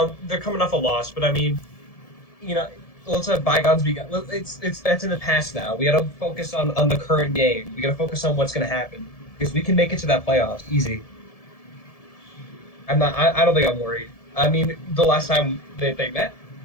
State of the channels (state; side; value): late; right; 1.7 ms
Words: coming off a loss, but I mean, let's let bygones be. It's that's in the past now. We got to focus on the current game. We got to focus on what's going to happen because we can make it to that playoffs easy. I don't think I'm worried. I mean, the last time they met,